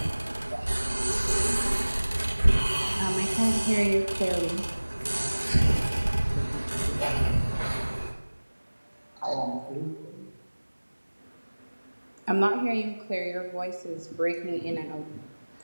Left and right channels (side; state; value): both; inverted; correlation -1.00